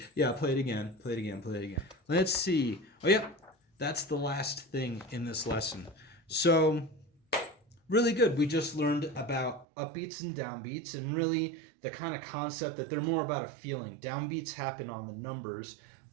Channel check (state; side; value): drops out; left; at 9.7 s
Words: yeah, play it again, play it again, play it again. Let's see. Oh, yeah, that's the last thing in this lesson. So really good. We just learned about upbeats and downbeats, and really the kind of concept that they're more about a feeling. Downbeats happen on the numbers,